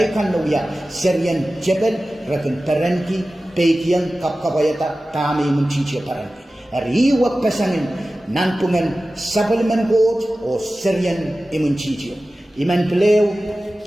nuya seryan jebel rakan parenti pekian kapkapayata tami imwintihtio parenti riwak pesangin nanpungan Sapwelimen Koht o seryan imwintihtio iman pleo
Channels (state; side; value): normal; both; correlation 0.95